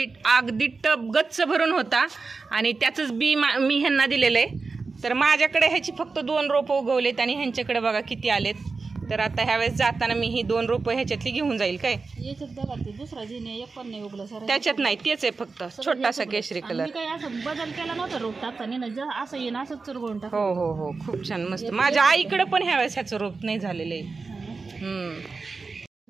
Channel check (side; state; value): left; quieter; 4.3 dB